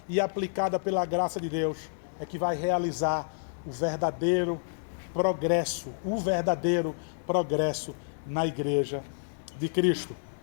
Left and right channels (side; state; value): right; silent; digital silence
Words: e aplicada pela graça de Deus, é que vai realizar o verdadeiro progresso na Igreja de Cristo.